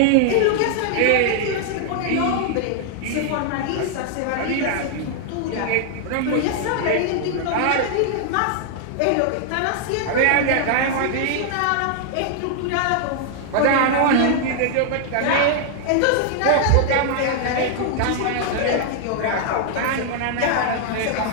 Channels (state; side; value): different; both; correlation 0.00